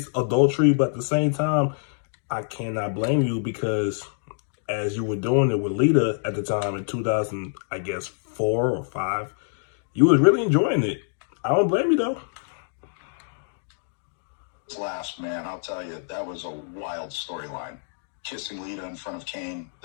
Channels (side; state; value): right; silent; digital silence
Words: adultery, but at the same time, I cannot blame you because as you were doing it with Lita at the time in 2000, I guess 4 or 5, you was really enjoying it. I don't blame you though. Last, man, I'll tell you, that was a wild storyline. Kissing Lita in front of Kane,